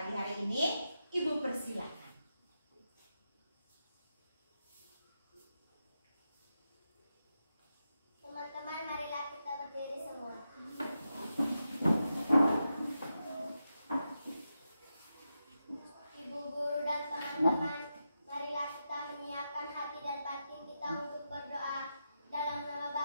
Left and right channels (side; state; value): both; inverted; correlation -0.88